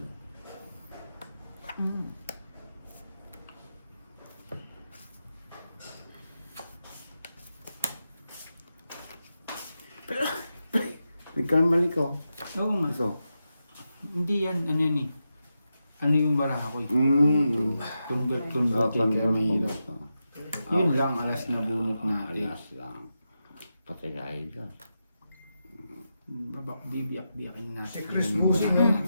Nagkamali ko. Oo nga. Ito. Hindi yan. Ano yan eh. Ano yung baraha ko eh. Convert Oh, kaya mahirap. convert. Yun lang, alas na bunot natin. Alas lang. Patay ka idol. Bibiyak-biyakin natin. Si Chris Yung Busi baraha mo.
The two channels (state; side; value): inverted; both; correlation -0.88